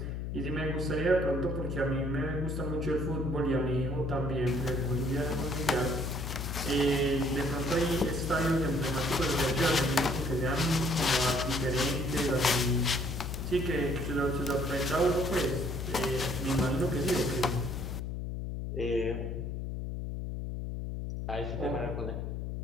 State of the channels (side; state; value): left; noise; hum, 4 dB below the sound